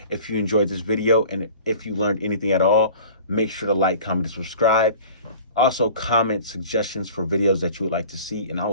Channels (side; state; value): both; inverted; correlation -0.44